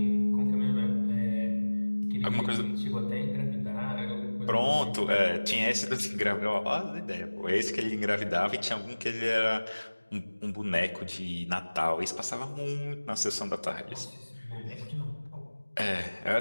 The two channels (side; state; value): both; inverted; correlation -1.00